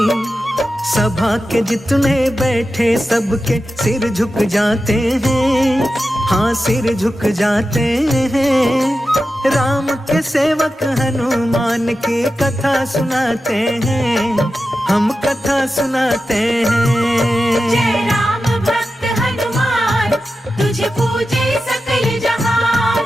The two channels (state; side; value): normal; both; correlation 0.92